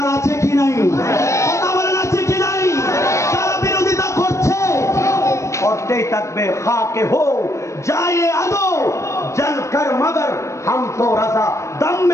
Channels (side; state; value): right; late; 0.14 ms